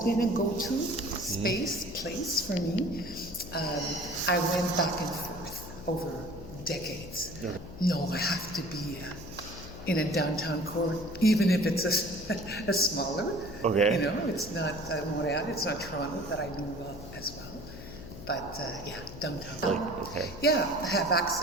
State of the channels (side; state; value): left; noise; hum, 13 dB below the sound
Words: a go-to place for me. I went back and forth over decades. No, I have to be in a downtown core, even if it's a smaller. Okay. You know, it's not Montreal, it's not Toronto that I knew as well. But downtown. Yeah, I have